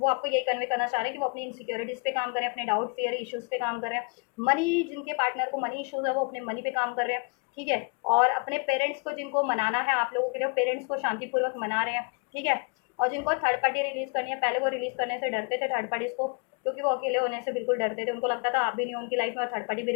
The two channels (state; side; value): quieter; right; 32.5 dB